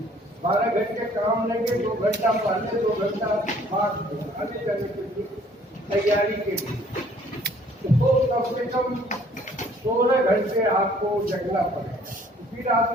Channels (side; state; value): both; normal; correlation 0.58